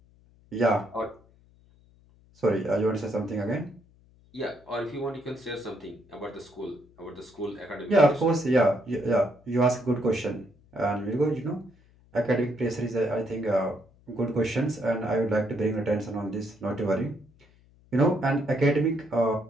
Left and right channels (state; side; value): noise; left; hum, 29 dB below the sound